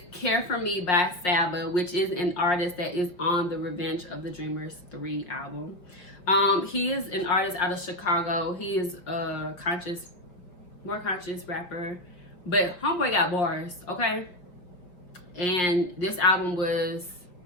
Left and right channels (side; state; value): right; late; 5.4 ms